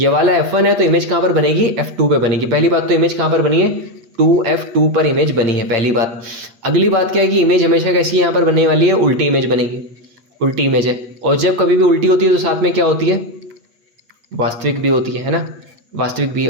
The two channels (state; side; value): late; left; 8.3 ms